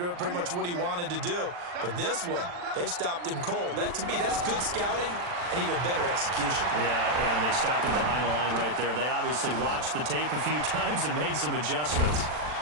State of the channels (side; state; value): left; late; 40 ms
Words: pretty much what he wanted to do. But this one, they've stopped him cold. That, to me, that's good scouting and even better execution. Yeah, and they stopped him behind the line right there. They obviously watched the tape a few times and made some adjustments.